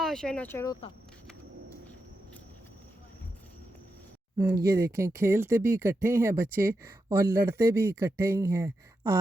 हशर नशर होता। ये देखें खेलते भी इकट्ठे हैं बच्चे और लड़ते भी इकट्ठे ही हैं।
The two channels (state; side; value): normal; both; correlation 0.87